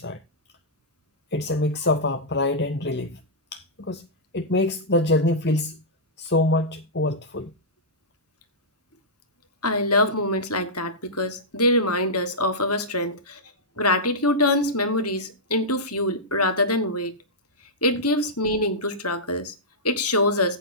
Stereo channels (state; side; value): normal; both; correlation -0.13